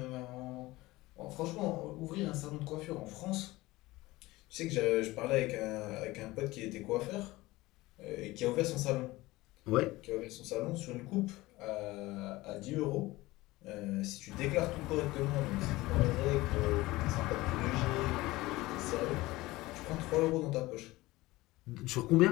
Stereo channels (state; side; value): quieter; right; 19.4 dB